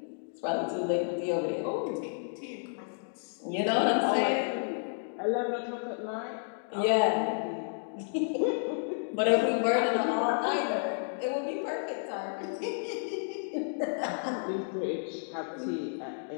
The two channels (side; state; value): right; silent; digital silence